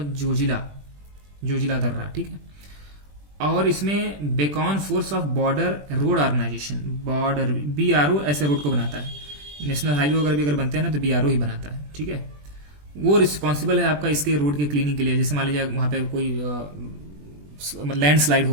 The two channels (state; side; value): late; left; 20 ms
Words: जोजिला दर्रा, ठीक है। और इसमें Beacon force of border road organisation, border BRO ऐसे रोड को बनाता है, नेशनल हाईवे वगैरह भी अगर बनते हैं ना तो BRO ही बनाता है, ठीक है। वो रिस्पॉन्सिबल है आपका इसके रोड के क्लीनिंग के लिए, जैसे मान लीजिए वहाँ पे कोई लैंडस्लाइड